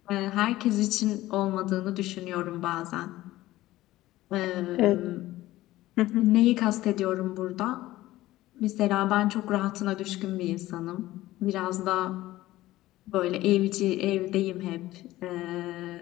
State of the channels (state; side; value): quieter; right; 16.4 dB